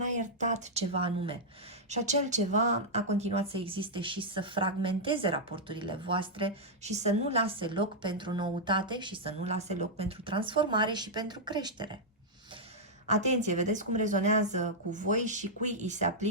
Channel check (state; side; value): normal; both; correlation -0.06